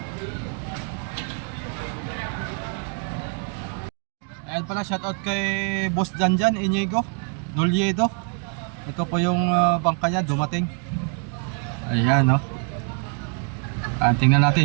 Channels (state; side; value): quieter; left; 39.1 dB